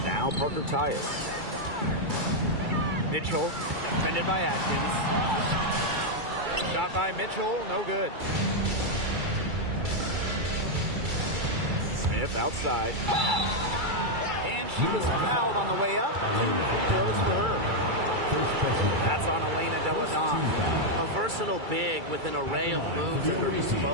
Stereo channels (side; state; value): left; late; 2.3 ms